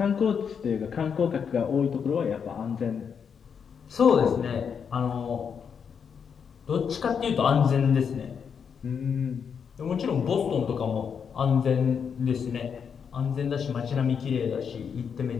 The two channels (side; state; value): right; quieter; 6.9 dB